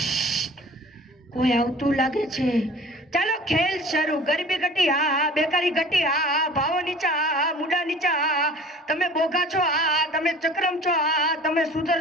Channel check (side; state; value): both; normal; correlation 0.45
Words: કોઈ આવતું લાગે છે ચાલો ખેલ શરૂ ગરીબી ઘટી હા બેકારી ઘટી હા ભાવો નીચા હા મુડા નીચા હા તમે બોગા છો હા તમે ચક્રમ છો હા તમે